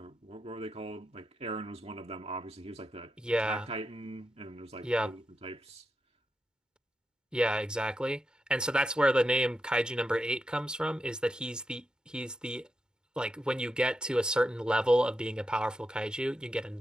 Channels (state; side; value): normal; both; correlation 0.87